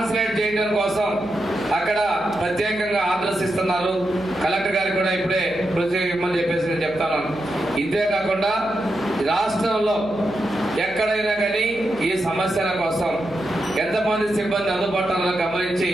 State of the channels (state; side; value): noise; left; hum, 22 dB below the sound